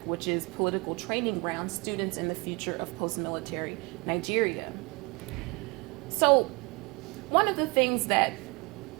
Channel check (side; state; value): left; quieter; 28.0 dB